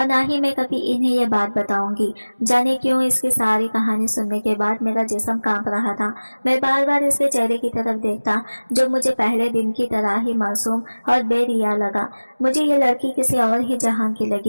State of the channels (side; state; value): both; inverted; correlation -1.00